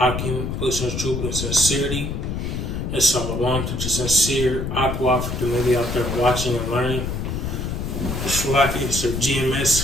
pushing truth and sincerity. And shalom to the sincere Aqua for the maybe out there watching and learning. Shalaki, it's the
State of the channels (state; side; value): noise; left; rumble, 3 dB below the sound